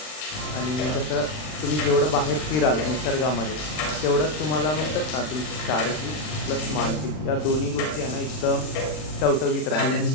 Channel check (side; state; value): right; late; 39 ms